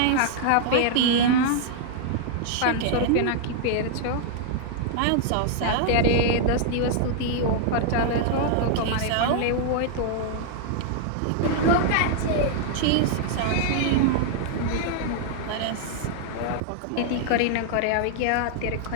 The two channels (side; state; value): both; different; correlation 0.00